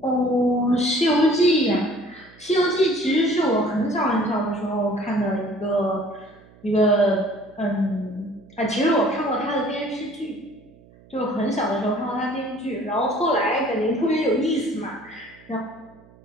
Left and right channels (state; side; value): noise; right; hum, 25 dB below the sound